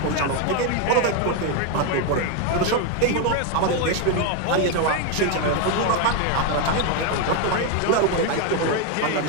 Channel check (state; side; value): different; both; correlation 0.02